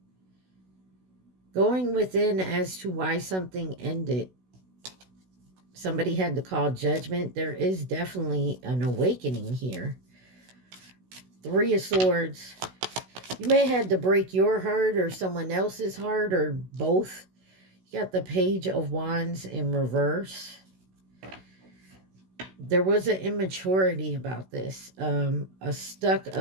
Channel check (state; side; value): late; left; 16 ms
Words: Going within as to why something ended. Somebody had to call judgment. There is definitely an awakening here. Three of Swords. You may have had to break your heart or someone else's heart or both. You got the Page of Wands in reverse. There was an immaturity about this. A stuck